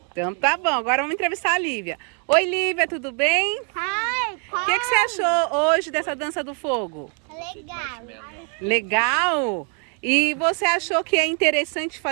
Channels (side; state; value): left; quieter; 39.2 dB